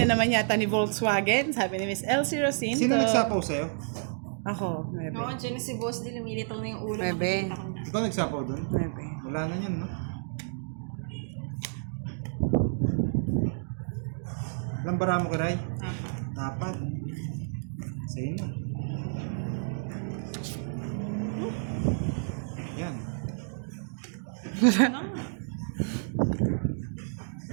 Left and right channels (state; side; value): silent; left; digital silence